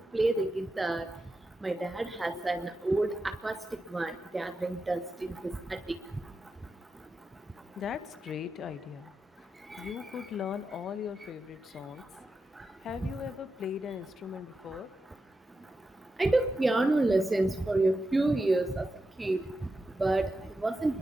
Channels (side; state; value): both; normal; correlation 0.89